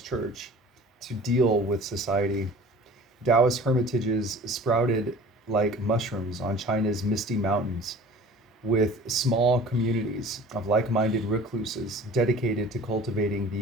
church to deal with society. Taoist hermitages sprouted like mushrooms on China's misty mountains, with small communities of like-minded recluses dedicated to cultivating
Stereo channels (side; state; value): both; normal; correlation 0.44